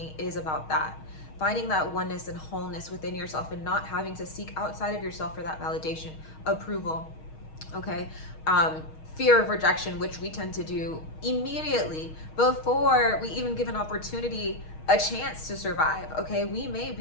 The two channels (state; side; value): late; right; 6.4 ms